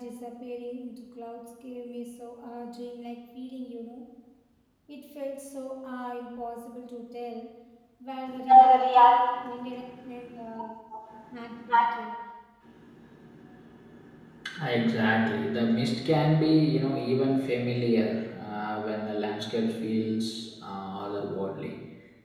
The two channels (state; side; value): identical; both; correlation 1.00